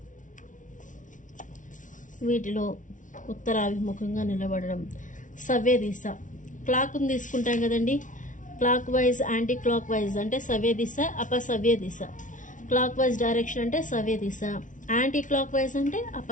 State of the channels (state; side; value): late; right; 0.37 ms